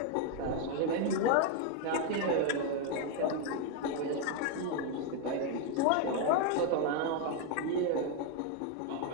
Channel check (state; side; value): different; both; correlation 0.01